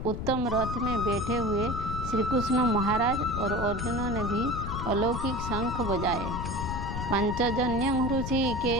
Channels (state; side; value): noise; left; rumble, 5 dB below the sound